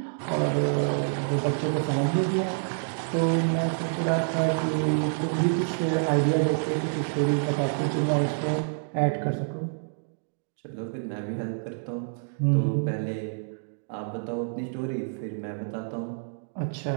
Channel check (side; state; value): left; silent; digital silence